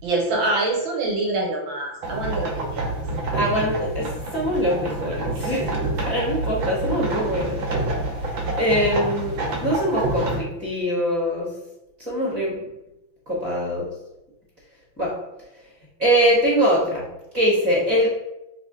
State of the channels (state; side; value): late; left; 5.9 ms